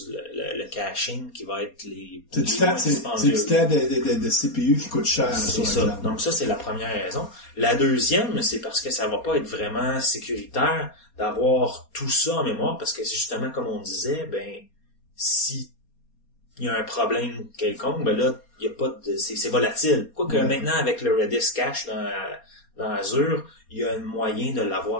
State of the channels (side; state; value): right; late; 4.2 ms